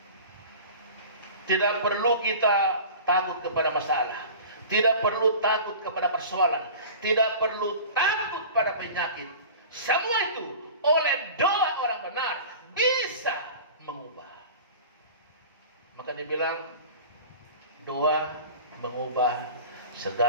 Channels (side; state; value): both; inverted; correlation -0.38